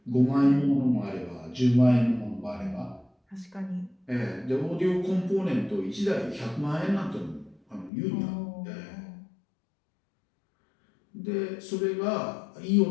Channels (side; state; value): right; drops out; at 7.9 s